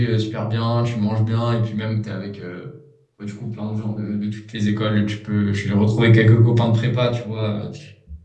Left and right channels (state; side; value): identical; both; correlation 1.00